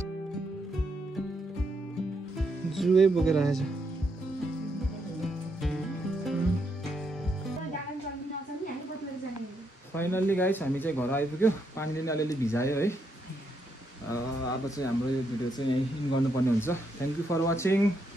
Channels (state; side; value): normal; both; correlation 0.78